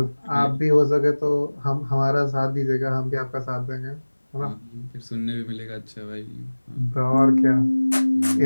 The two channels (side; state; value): both; inverted; correlation -1.00